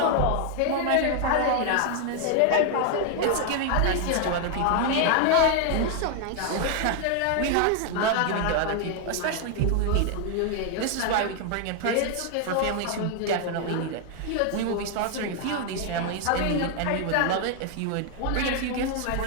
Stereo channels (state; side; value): different; both; correlation 0.00